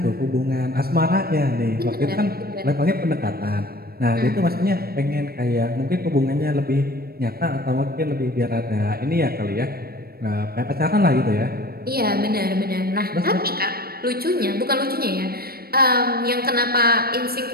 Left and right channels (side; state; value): left; late; 0.44 ms